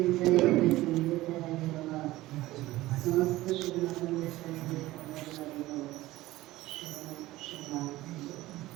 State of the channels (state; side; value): quieter; left; 17.3 dB